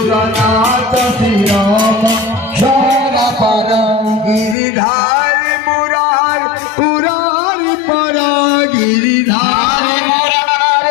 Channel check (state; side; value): drops out; right; at 4.5 s